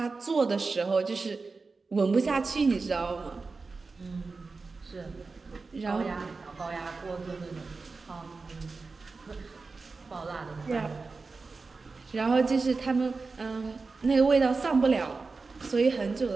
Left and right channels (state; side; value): quieter; left; 4.1 dB